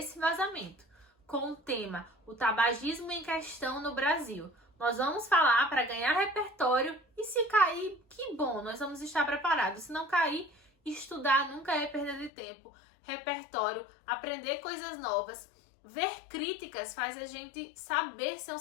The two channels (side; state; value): right; drops out; at 12.3 s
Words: vazamento, com o tema o tabagismo em questão no Brasil. Nós vamos falar para ganhar repertório e se cair, que bom, nós vamos estar preparados. Se não cair, estudar nunca é perda de tempo. Repertório, aprender coisas novas, ver críticas faz a gente saber ser um